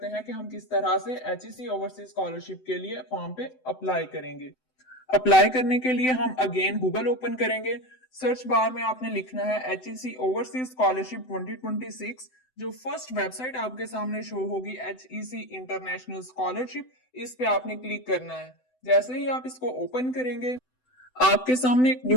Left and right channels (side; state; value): right; late; 7.9 ms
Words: हैं कि हम किस तरह से एचईसी ओवरसीज स्कॉलरशिप के लिए फॉर्म पे अप्लाई करेंगे। अप्लाई करने के लिए हम अगेन गूगल ओपन करेंगे। सर्च बार में आपने लिखना है एचईसी ओवरसीज स्कॉलरशिप 2026। जो फर्स्ट वेबसाइट आपके सामने शो होगी एचईसी इंटरनेशनल स्कॉलरशिप, इस पे आपने क्लिक करना है। जैसे ही आप इसको ओपन करेंगे आपके सामने एक